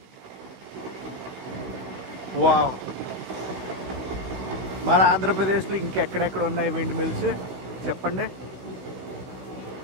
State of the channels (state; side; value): late; left; 15 ms